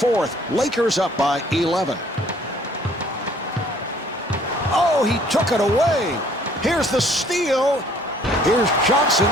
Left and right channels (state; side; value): normal; both; correlation 0.58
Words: Lakers up by 11. Oh, he took it away. Here's the steal. Here's Johnson.